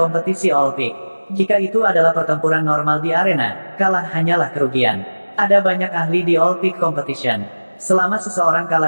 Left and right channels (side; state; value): both; inverted; correlation -1.00